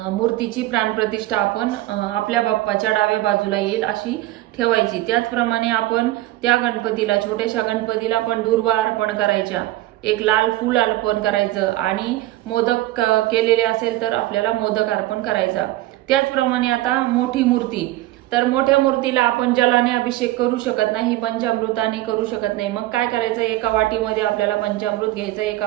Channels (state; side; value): quieter; left; 16.4 dB